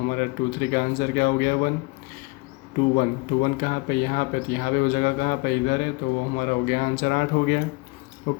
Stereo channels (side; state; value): right; quieter; 26.7 dB